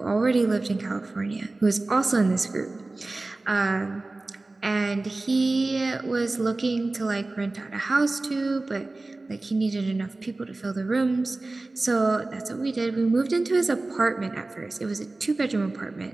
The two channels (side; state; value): left; quieter; 3.1 dB